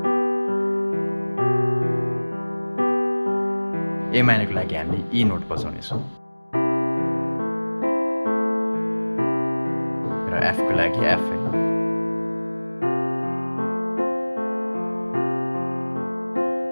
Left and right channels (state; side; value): inverted; both; correlation -1.00